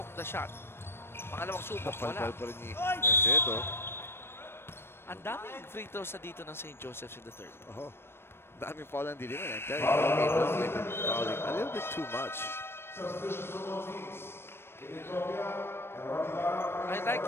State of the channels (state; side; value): late; right; 0.12 ms